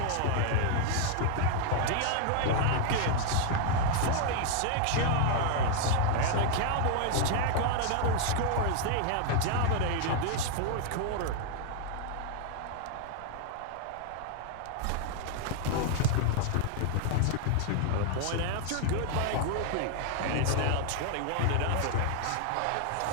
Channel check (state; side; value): different; both; correlation 0.00